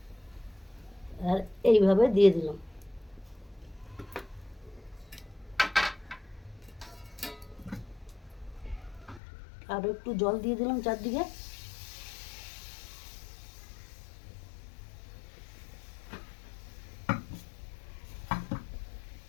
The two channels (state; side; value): drops out; right; at 9.2 s